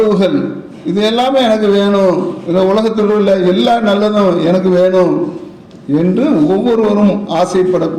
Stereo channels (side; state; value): both; identical; correlation 1.00